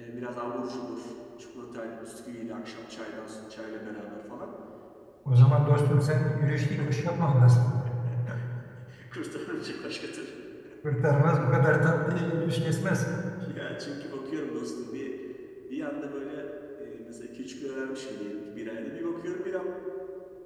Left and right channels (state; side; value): identical; both; correlation 1.00